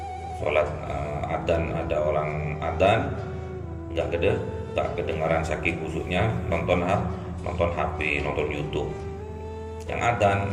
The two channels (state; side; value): identical; both; correlation 1.00